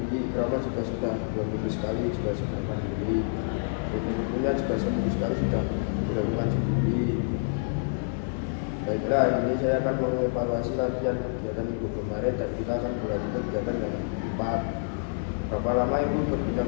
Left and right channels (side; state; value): right; silent; digital silence